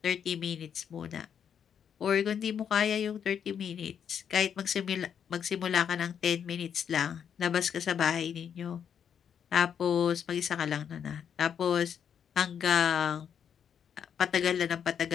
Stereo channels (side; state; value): right; quieter; 8.1 dB